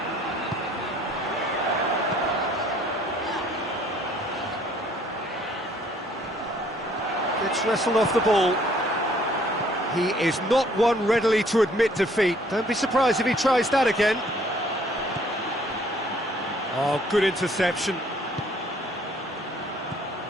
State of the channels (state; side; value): normal; both; correlation 0.60